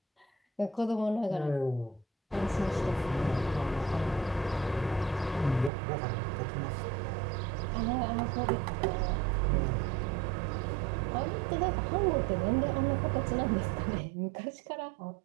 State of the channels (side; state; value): left; drops out; at 5.7 s